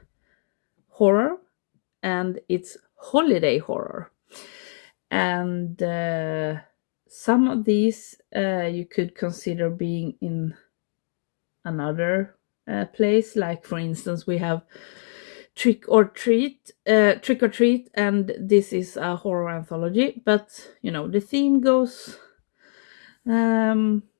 horror and it's holiday horror. And some of these you could consider being in another place. Like, for instance, we have Trick or Treat, and this is a horror anthology. But the theme goes um,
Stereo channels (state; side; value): silent; right; digital silence